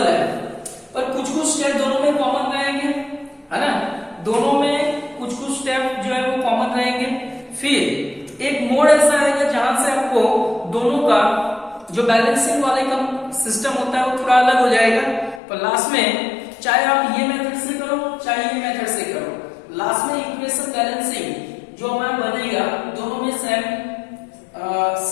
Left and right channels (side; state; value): right; drops out; at 15.4 s